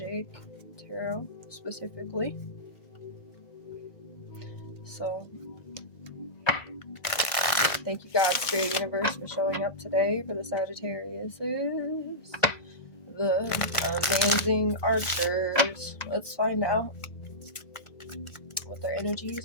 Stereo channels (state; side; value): late; right; 1.5 ms